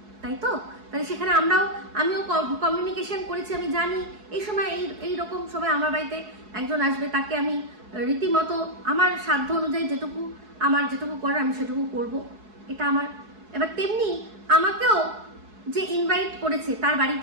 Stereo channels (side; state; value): left; late; 4.7 ms